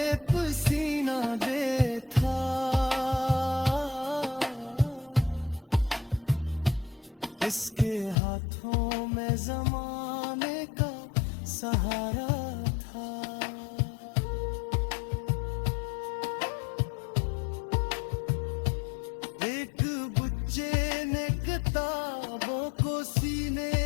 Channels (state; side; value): drops out; right; at 8.2 s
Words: पसीना दे था, इसके हाथों में जमाने का सहारा था। एक बच्चे ने किताबों को सीने